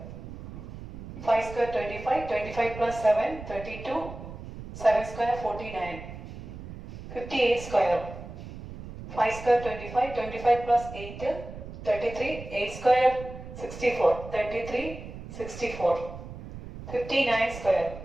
5 square 25, 25 plus 7 32, 7 square 49, 58 square, 5 square 25, 25 plus 8 33, 8 square 64, 33, 64, 59 square,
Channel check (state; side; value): noise; right; rumble, 12 dB below the sound